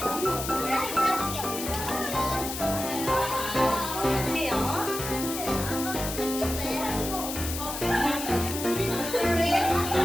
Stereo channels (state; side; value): noise; left; hiss, 6 dB below the sound